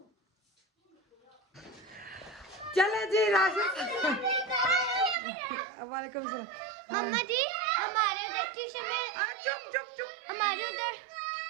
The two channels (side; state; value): left; drops out; at 5.2 s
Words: चले जी राशिद वालेकुम सलाम मम्मा जी हमारे उधर ट्यूशन में अरे चुप